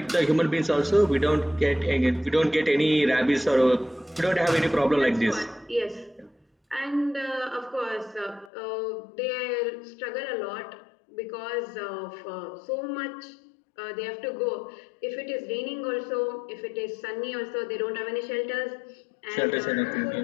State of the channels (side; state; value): right; drops out; at 8.5 s